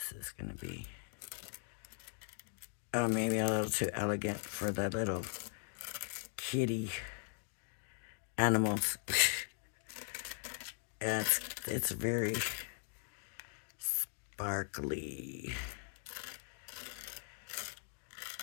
is going to be, oh, maybe a little too elegant for the little kitty animals. It's very sparkly.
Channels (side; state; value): right; silent; digital silence